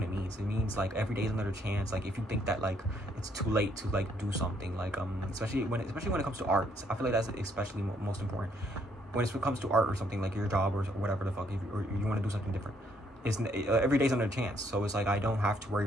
it means. It means like every day is another chance. Like if you think that like it's too late to like do something, like especially when it comes to art, I feel like that's especially most important. When it comes to art or something like your job or whatever the fuck, or you want to do something different, every day's another chance. So it's like I don't have to worry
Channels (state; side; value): normal; both; correlation 0.70